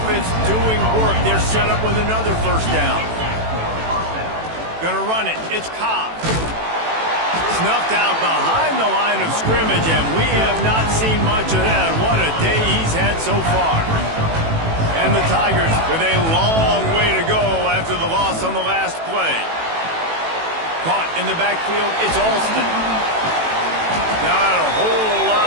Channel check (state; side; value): late; left; 18 ms